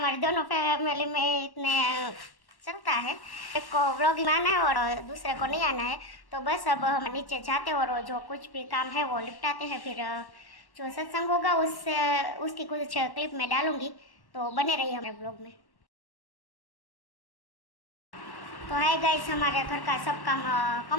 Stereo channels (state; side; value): late; right; 1.1 ms